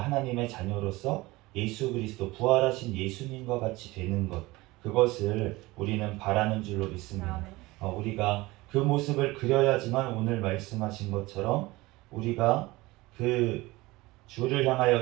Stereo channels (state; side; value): quieter; left; 20.7 dB